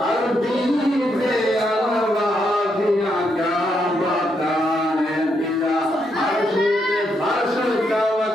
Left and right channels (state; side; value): normal; both; correlation 0.78